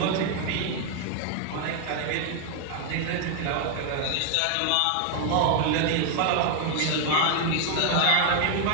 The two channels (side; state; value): both; different; correlation 0.00